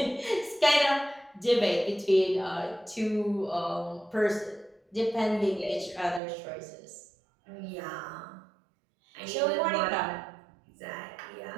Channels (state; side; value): drops out; left; at 6.2 s